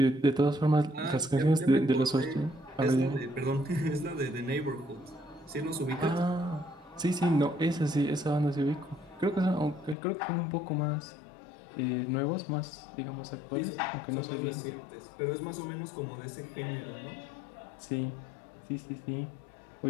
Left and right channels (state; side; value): drops out; right; at 10.0 s